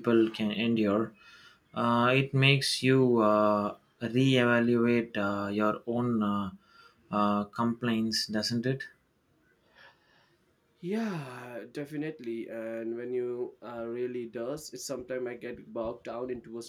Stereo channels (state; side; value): identical; both; correlation 1.00